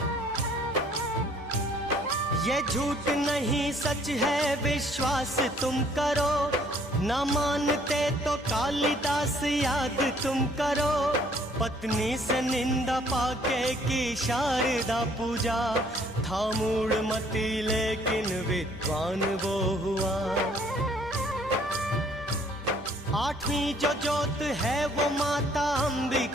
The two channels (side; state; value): both; normal; correlation 0.61